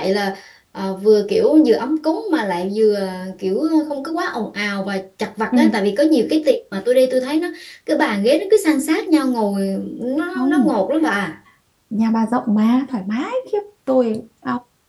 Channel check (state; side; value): identical; both; correlation 1.00